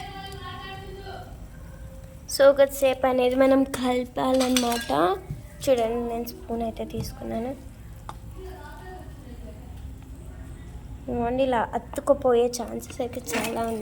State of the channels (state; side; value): identical; both; correlation 1.00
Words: సో కొద్దిసేపు అనేది మనం కలపాలన్నమాట. చూడండి నేను స్పూన్ అయితే తీసుకున్నాను. ఇవన్నీ ఇలా అతుక్కుపోయే ఛాన్సెస్ అయితే చాలా